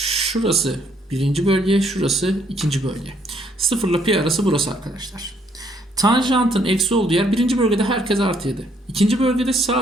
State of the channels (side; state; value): both; normal; correlation 0.68